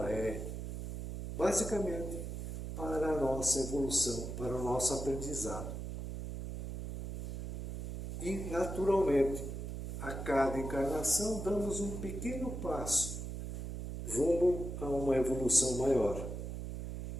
é basicamente para a nossa evolução, para o nosso aprendizado. E, naturalmente, a cada encarnação damos um pequeno passo rumo a uma evolução maior.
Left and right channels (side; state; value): right; noise; hum, 6 dB below the sound